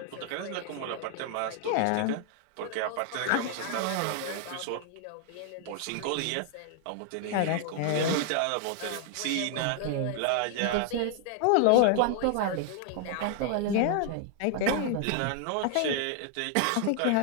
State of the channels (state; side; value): different; both; correlation 0.00